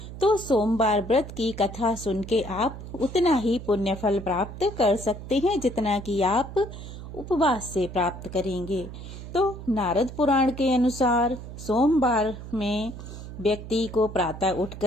तो सोमवार व्रत की कथा सुन के आप उतना ही पुण्य फल प्राप्त कर सकते हैं जितना कि आप उपवास से प्राप्त करेंगे। तो नारद पुराण के अनुसार सोमवार में व्यक्ति को प्रातः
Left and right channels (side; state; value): right; noise; hum, 11 dB below the sound